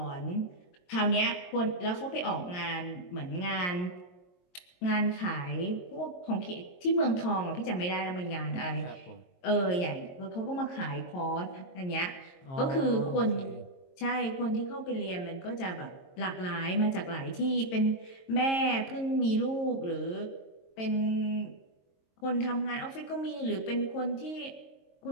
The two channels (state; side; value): late; right; 22 ms